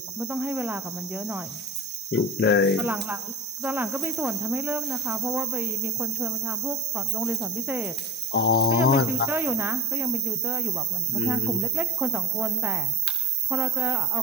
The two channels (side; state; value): both; normal; correlation 0.31